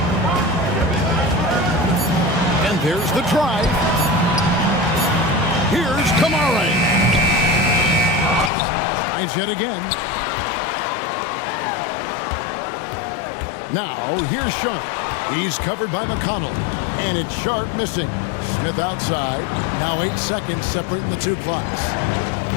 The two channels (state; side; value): drops out; right; at 8.5 s